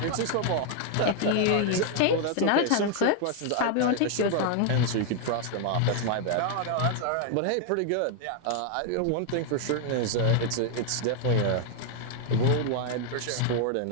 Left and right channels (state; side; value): different; both; correlation 0.00